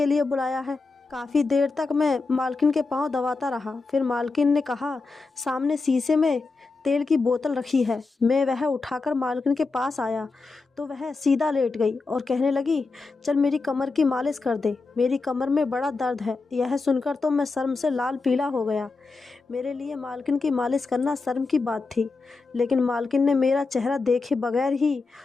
लिए बुलाया है। काफ़ी देर तक मैं मालकिन के पाँव दबाता रहा। फिर मालकिन ने कहा, सामने शीशे में तेल की बोतल रखी है। मैं वह उठाकर मालकिन के पास आया तो वह सीधा लेट गई और कहने लगी, चल मेरी कमर की मालिश कर दे, मेरी कमर में बड़ा दर्द है। यह सुनकर तो मैं शर्म से लाल पीला हो गया। मेरे लिए मालकिन की मालिश करना शर्म की बात थी, लेकिन मालकिन ने मेरा चेहरा देखे बगैर ही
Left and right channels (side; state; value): right; quieter; 3.9 dB